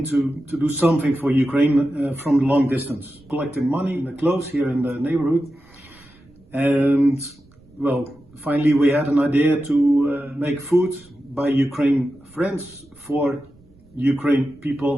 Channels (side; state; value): right; noise; rumble, 29 dB below the sound